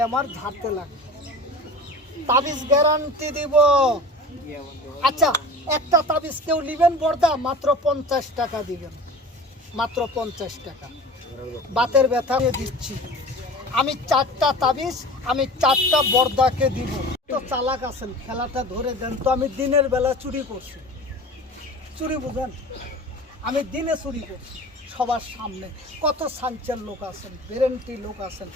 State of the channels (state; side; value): normal; both; correlation 0.38